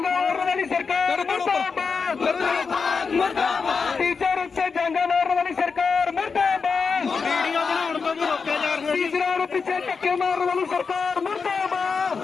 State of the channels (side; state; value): right; quieter; 5.2 dB